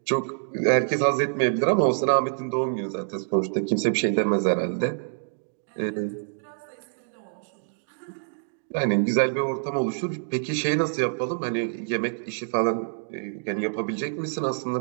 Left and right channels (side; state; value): left; silent; digital silence